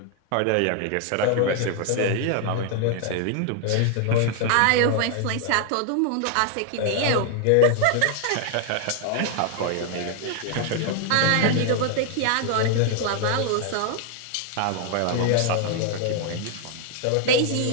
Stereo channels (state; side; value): different; both; correlation 0.00